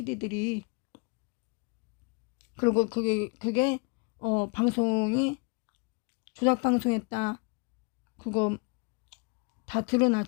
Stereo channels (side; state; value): right; quieter; 30.7 dB